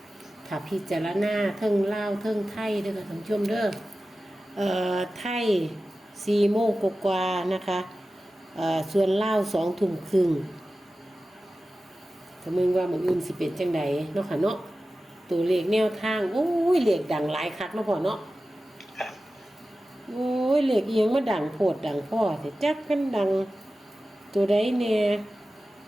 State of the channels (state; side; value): normal; both; correlation 0.95